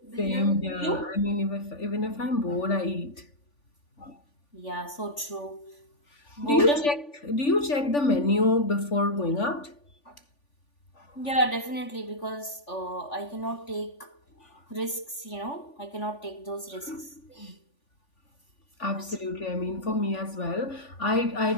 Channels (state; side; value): late; right; 3.5 ms